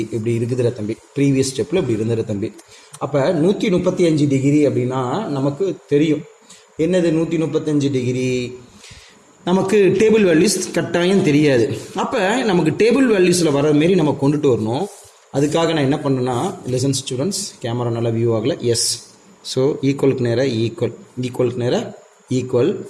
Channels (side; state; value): both; identical; correlation 1.00